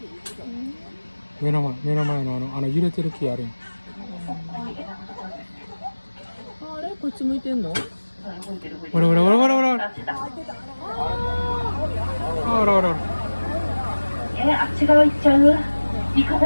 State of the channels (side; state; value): both; inverted; correlation -1.00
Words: 目の前の揺れてる木あるやん。あれこっち向いてんの？ほらほらほらほらほら。ほらほら。あっち側行っちゃう？行く方